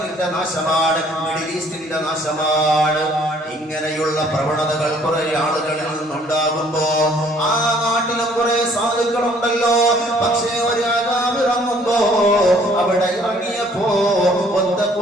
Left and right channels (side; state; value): both; normal; correlation 0.60